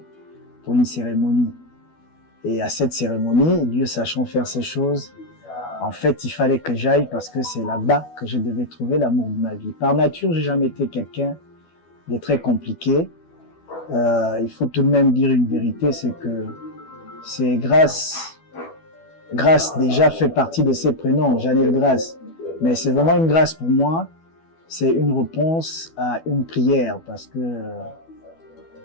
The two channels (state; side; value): late; right; 12 ms